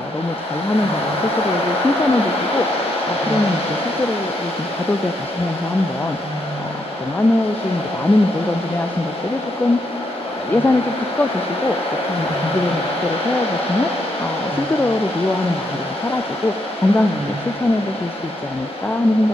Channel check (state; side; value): normal; both; correlation 0.78